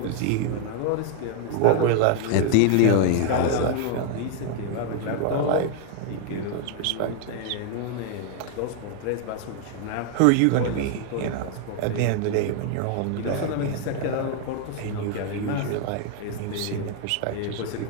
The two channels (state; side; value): different; both; correlation 0.00